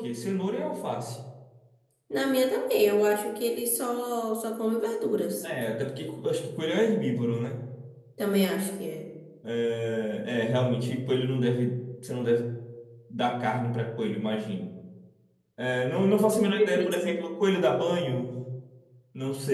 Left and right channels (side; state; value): both; identical; correlation 1.00